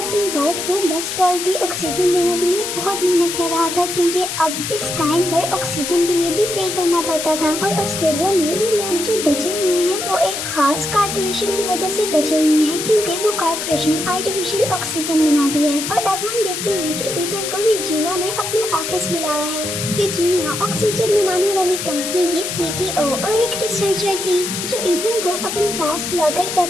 वाइफ को बेस्ट क्वालिटी ऑक्सीजन देने के लिए बहुत मेहनत कर रहा था क्योंकि अब इस टाइम पर ऑक्सीजन के लिए भी पे करना पड़ता था। और ऑस्ट्रेलिया में भी लोग जो बचे हुए हैं वो एक खास कारपोरेशन की वजह से बचे हुए हैं क्योंकि वो कारपोरेशन आर्टिफिशियल ऑक्सीजन बनाती है। और अब हम देखते हैं कि ईथन को रेजिना ने अपने ऑफिस बुलाया है। रेजिना ऑक्सीजन बनाने वाली कंपनी की सीटीओ और एक रिसर्चर थी जो ईथन को अपने पास बुलाकर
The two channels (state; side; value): noise; left; hiss, 4 dB below the sound